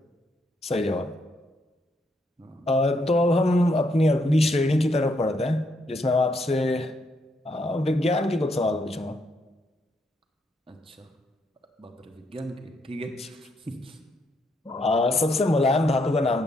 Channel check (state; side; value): normal; both; correlation 0.75